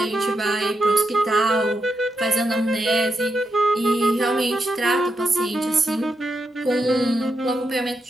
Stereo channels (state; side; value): normal; both; correlation 0.83